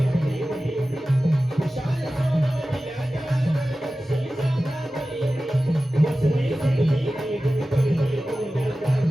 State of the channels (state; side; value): normal; both; correlation 0.95